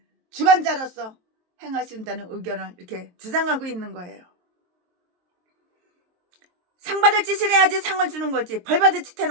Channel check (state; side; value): late; left; 23 ms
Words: 주관자로서 행하신다는 의견을 이렇게 주장하고 있는 거예요. 상 받을 짓을 해야지 상을 주는 거지. 벌 받을 짓